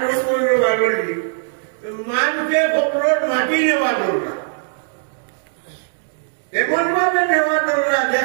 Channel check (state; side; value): silent; left; digital silence